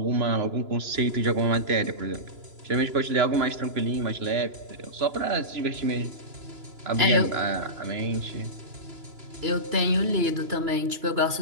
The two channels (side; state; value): left; late; 2.9 ms